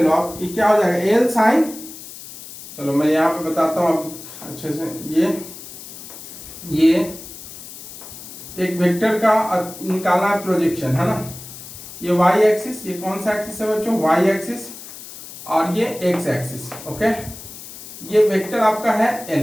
लो आप, ये क्या हो जाएगा एल साइन, चलो मैं यहाँ पे बताता हूँ आपको अच्छे से, ये एक वेक्टर का निकालना है प्रोजेक्शन, है ना, ये वाई एक्सिस, ये कौन सा एक्सिस है बच्चों, वाई एक्सिस, और ये एक्स एक्सिस। ओके, ये वेक्टर आपका है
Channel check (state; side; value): noise; left; hiss, 14 dB below the sound